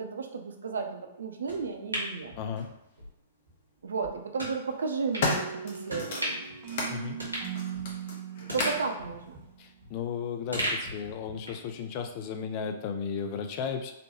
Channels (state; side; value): inverted; both; correlation -0.43